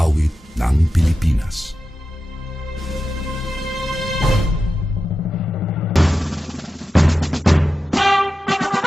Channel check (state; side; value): normal; both; correlation 0.92